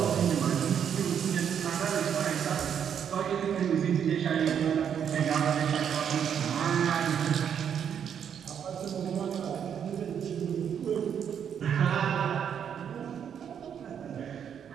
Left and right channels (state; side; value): quieter; left; 8.3 dB